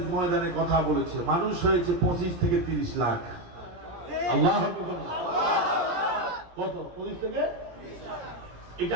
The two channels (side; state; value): left; late; 17 ms